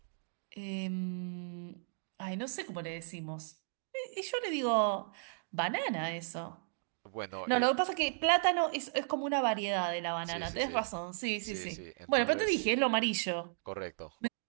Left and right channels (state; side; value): silent; left; digital silence